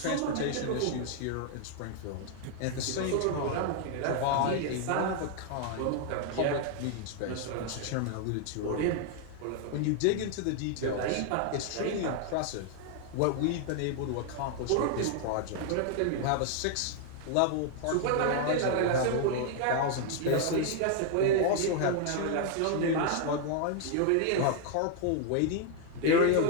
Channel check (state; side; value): different; both; correlation 0.00